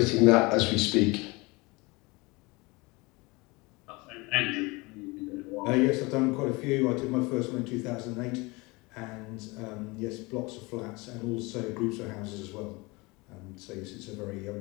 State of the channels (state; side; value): quieter; right; 24.9 dB